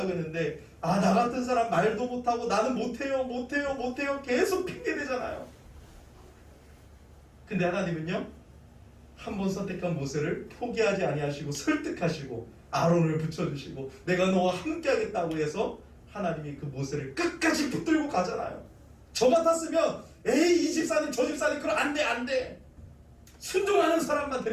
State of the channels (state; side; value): identical; both; correlation 1.00